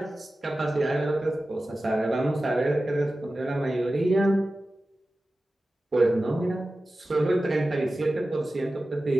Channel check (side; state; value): both; normal; correlation 0.95